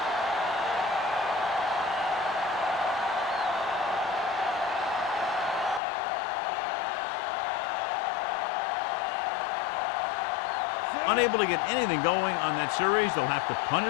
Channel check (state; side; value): drops out; right; at 5.8 s